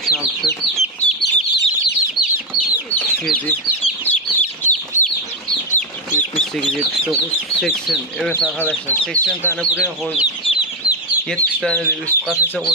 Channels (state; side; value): normal; both; correlation 0.07